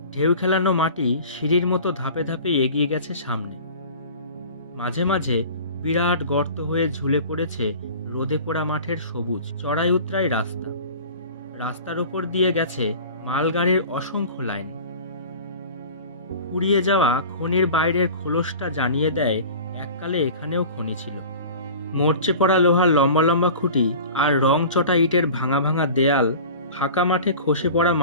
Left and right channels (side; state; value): both; inverted; correlation -0.40